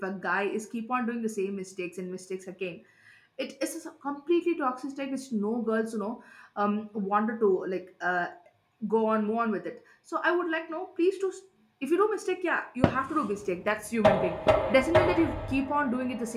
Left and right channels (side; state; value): both; identical; correlation 1.00